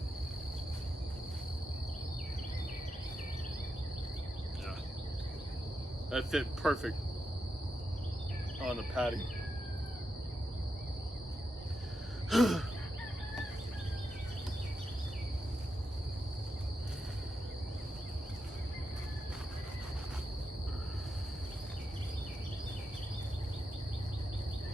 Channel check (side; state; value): both; normal; correlation 0.86